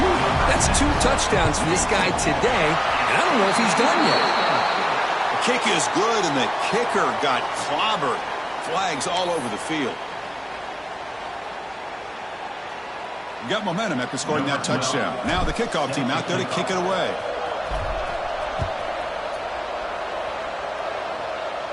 he? That's 2 touchdowns for this guy today, and I don't know if he's done yet. The kick is good, and the kicker got clobbered. Flags all over the field. Got momentum after scoring that touchdown. Now the kickoff team out there to kick it away.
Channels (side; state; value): both; identical; correlation 1.00